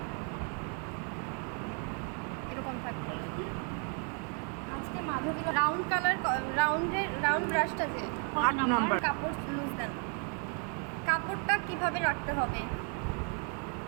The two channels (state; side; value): quieter; left; 39.7 dB